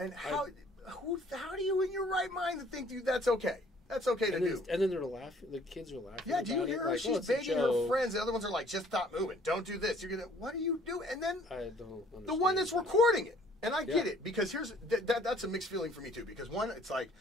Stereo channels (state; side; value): normal; both; correlation 0.58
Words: how do you in your right mind to think, dude, that's okay? That's okay to do. And then they're laughing. The kids are laughing. Yeah, do you about hear it. her? Like, She's it's a begging her joke. friends. The other ones are like, just stop moving. Don't do this. You're gonna. What are you doing? And then I don't understand. the one that's that. recording it. And I get Yeah. it, because here's that's a mixed feeling for me too. Because one, it's like,